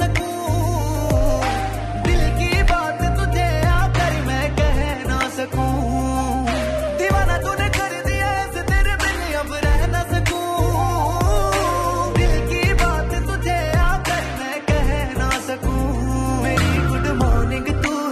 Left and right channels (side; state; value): both; identical; correlation 1.00